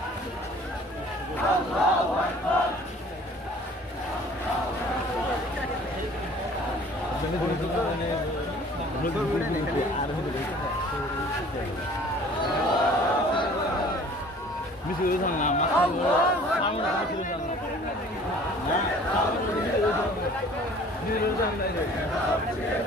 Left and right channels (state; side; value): normal; both; correlation 0.50